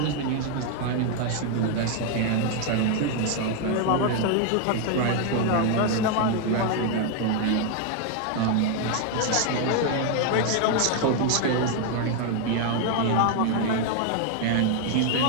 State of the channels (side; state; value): both; different; correlation 0.00